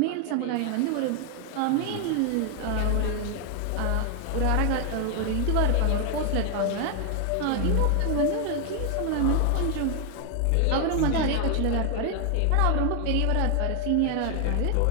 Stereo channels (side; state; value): both; different; correlation 0.00